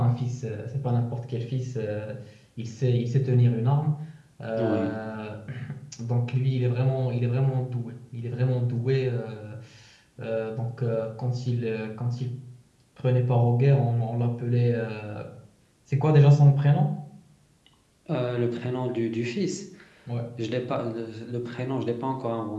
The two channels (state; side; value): identical; both; correlation 1.00